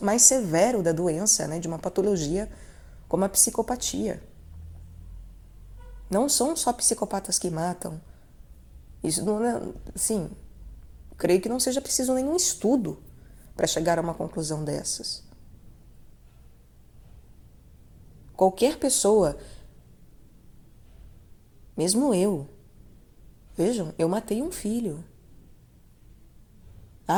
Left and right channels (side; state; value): both; identical; correlation 1.00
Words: severo da doença, né, de uma patologia como a psicopatia. Não são só psicopatas que matam. Isso não é, assim, creio que não seja preciso nenhum estudo para chegar a uma conclusão dessas. Qualquer pessoa, mesmo eu, vejam, eu matei um filho.